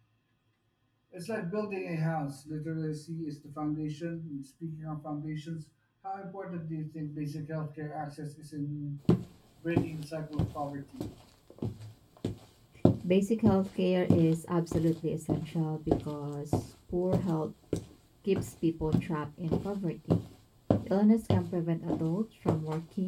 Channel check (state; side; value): identical; both; correlation 1.00